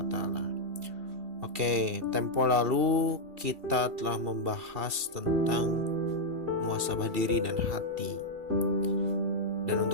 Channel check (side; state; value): left; late; 2.7 ms